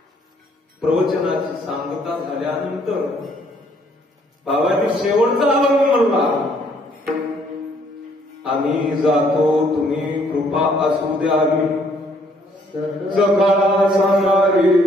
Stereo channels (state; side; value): normal; both; correlation 0.65